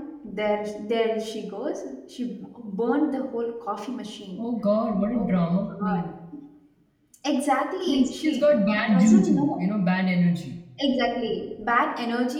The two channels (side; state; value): both; identical; correlation 1.00